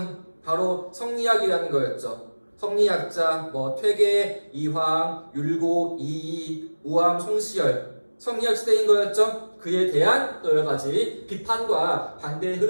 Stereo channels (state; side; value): inverted; both; correlation -1.00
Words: 바로 성리학이라는 거였죠. 성리학자 퇴계, 이황, 율곡, 이이, 우암, 송시열 성리학 시대인 거였죠. 그에 대한 또 여러 가지 비판과 반대의